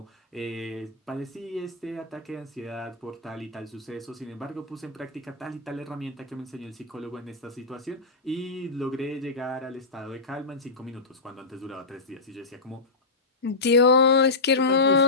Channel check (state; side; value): quieter; right; 3.7 dB